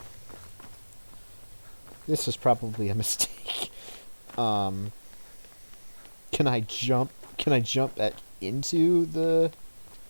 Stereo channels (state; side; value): inverted; both; correlation -1.00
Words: This is probably a mistake. Can I jump? Can I jump back into the